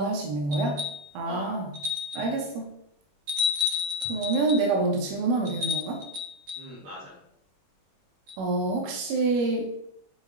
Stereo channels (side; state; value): left; late; 21 ms